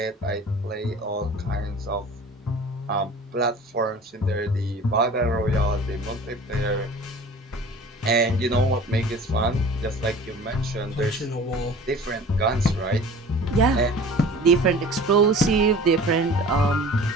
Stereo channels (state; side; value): normal; both; correlation 0.43